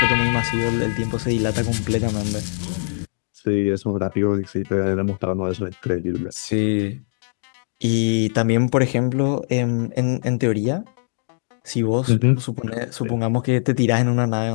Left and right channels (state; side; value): silent; right; 64 dB below the other